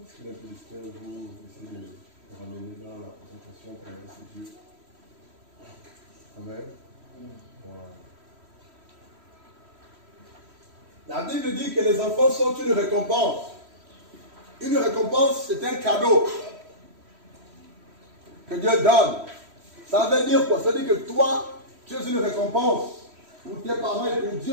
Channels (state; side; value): late; left; 3.1 ms